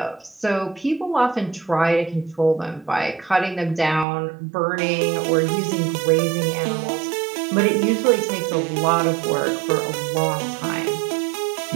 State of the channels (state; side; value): drops out; left; at 4.0 s